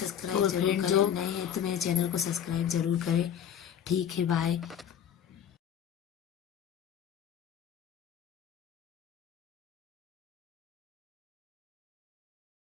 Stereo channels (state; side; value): quieter; right; 9.1 dB